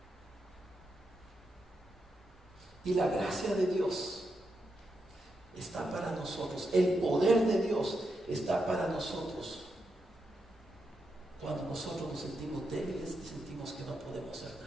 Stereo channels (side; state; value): both; normal; correlation 0.85